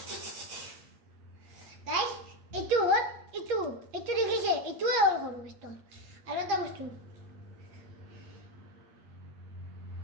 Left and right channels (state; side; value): late; left; 8.5 ms